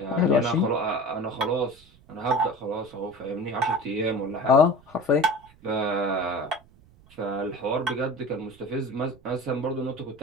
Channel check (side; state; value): right; noise; rumble, 26 dB below the sound